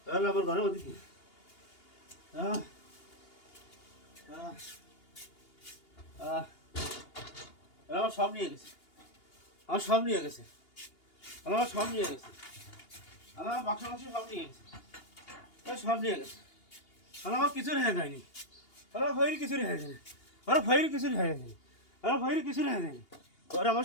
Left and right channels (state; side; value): late; right; 2.8 ms